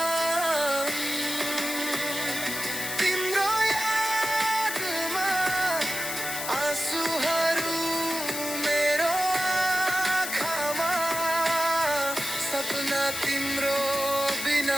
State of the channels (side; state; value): left; noise; hiss, 5 dB below the sound